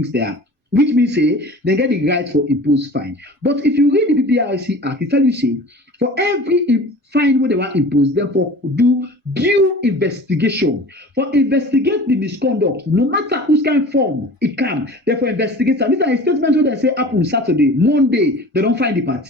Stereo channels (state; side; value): normal; both; correlation 0.40